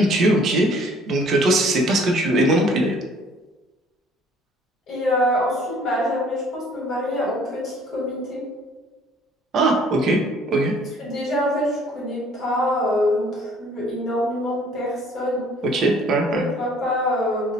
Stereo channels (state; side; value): normal; both; correlation 0.57